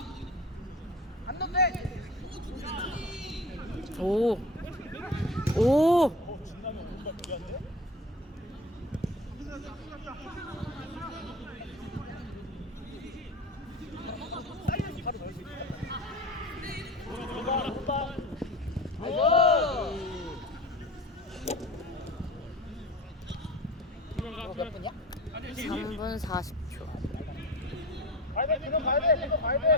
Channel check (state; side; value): normal; both; correlation 0.34